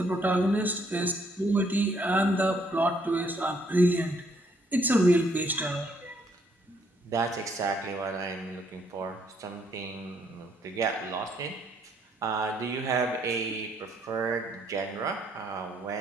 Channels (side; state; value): both; normal; correlation 0.69